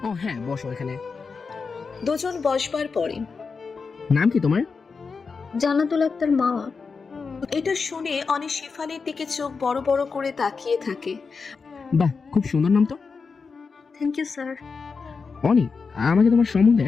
ও হ্যাঁ, বসো এখানে। দুজন বসবার পরে নাম কি তোমার? জান্নাতুল আক্তার মামা। এটা শুনে অনি শেফালির দিকে চোখ বড় বড় করে তাকিয়ে থাকে। বাহ, খুব সুন্দর নাম তো। Thank you sir. অনি আমাকে তোমার সম্বন্ধে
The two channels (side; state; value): right; quieter; 4.9 dB